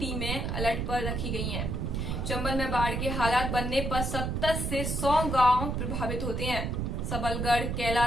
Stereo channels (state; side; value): noise; right; rumble, 1 dB below the sound